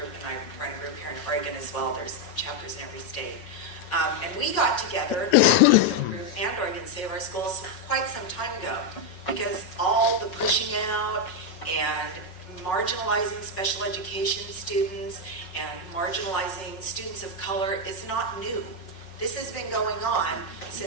and I run a group here in Oregon as well. There's chapters in every state. And we got together, the group and Oregon Save Our Schools, quite some time ago, because all the pushing out and marginalizing special education students and marginalizing students of color is not new. This has been going on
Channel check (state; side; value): late; right; 5.4 ms